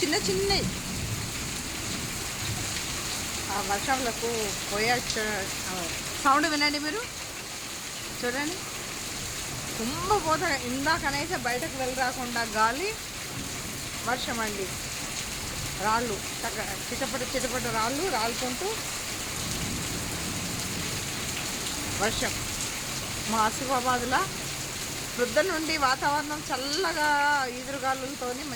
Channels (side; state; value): both; identical; correlation 1.00